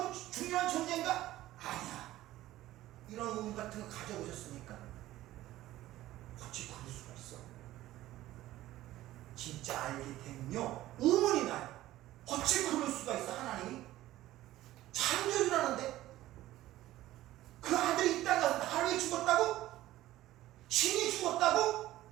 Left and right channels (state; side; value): quieter; left; 15.3 dB